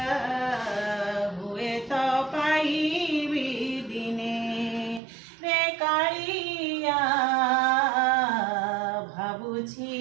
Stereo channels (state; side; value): drops out; left; at 5.0 s